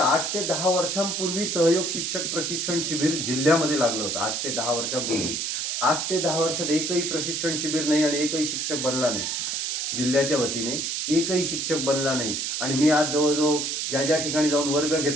ते 10 वर्षांपूर्वी सहयोग शिक्षक प्रशिक्षण शिबिर जिल्ह्यामध्ये लागलं होतं। 8 ते 10 वर्षांपूर्वी, 8 ते 10 वर्षात एकही प्रशिक्षण शिबिर नाही आणि एकही शिक्षक बनला नाही। जिल्ह्याच्या वतीने एकही शिक्षक बनला नाही। आणि मी आज जवळजवळ ज्या ठिकाणी जाऊन वर्ग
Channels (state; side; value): noise; right; hiss, 1 dB below the sound